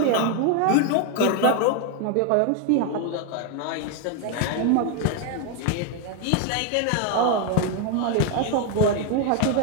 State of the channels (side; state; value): both; different; correlation 0.01